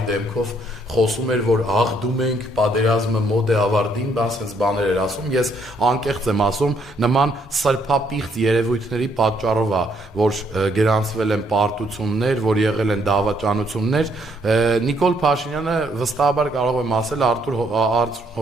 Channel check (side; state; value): both; normal; correlation 0.70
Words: դեմքով խոսում էր, որ աղդում ենք, պատերազմը մոտ է ավարտին, սենց բաներ էր ասում, ես անկեղծ եմ ասում, նման սրբապիղծ երևույթների պատճառով է, որ գրանցվել են պարտություններ, որ եղել են դավաճանություններ, Նիկոլ Փաշինյանը վստահաբար կարող եմ ասել Արթուր